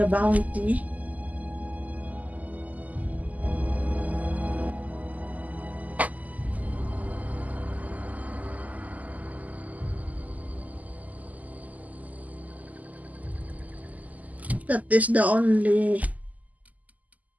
bounty. That is the only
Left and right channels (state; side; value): late; left; 0.077 ms